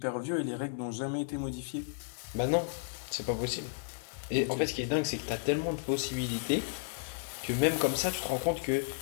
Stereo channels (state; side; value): silent; right; 56 dB below the other